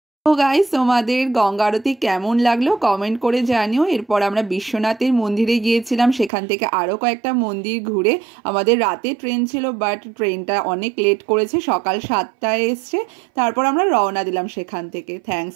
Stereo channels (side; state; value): left; drops out; at 6.3 s